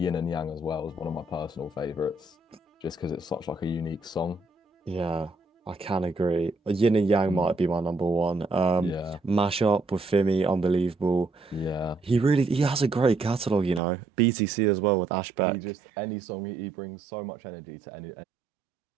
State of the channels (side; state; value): left; drops out; at 13.8 s